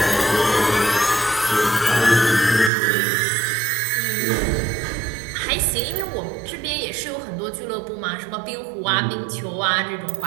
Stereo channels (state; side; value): drops out; left; at 2.7 s